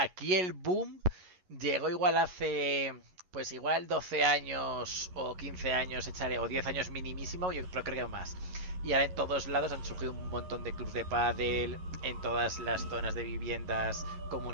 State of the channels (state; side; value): late; left; 11 ms